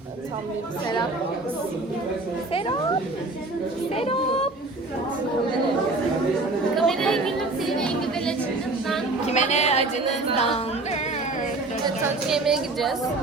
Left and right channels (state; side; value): quieter; left; 3.1 dB